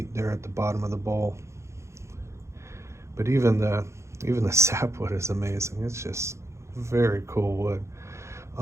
there at the bottom of the bowl. But even the sapwood is amazing. It's just very cool wood.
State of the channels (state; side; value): late; left; 0.14 ms